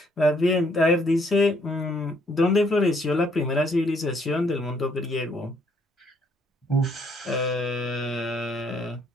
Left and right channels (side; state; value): both; normal; correlation 0.68